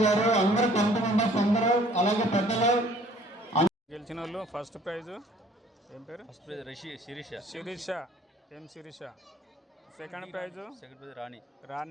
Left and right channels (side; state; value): both; normal; correlation 0.56